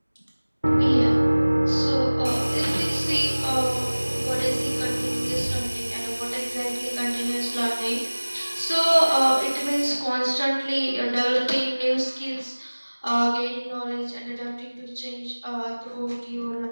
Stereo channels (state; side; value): inverted; both; correlation -1.00